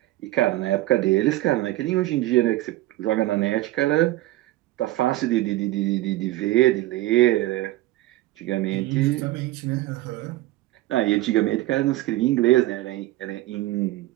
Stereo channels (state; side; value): quieter; left; 17.0 dB